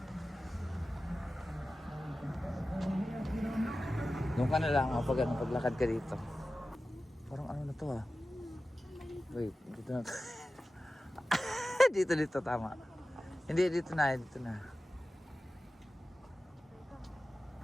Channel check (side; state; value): both; normal; correlation 0.95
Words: Doon ka na lang pag ano, paglakad ka dito. Parang ano na to ah. Wait, dito na to. dito tama. Hindi, dito na.